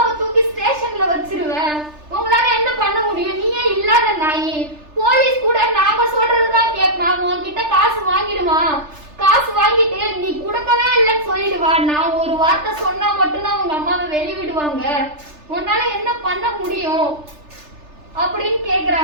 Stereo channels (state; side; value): late; left; 3.3 ms